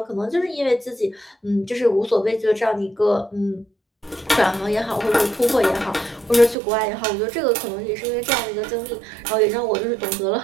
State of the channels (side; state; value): left; drops out; at 6.6 s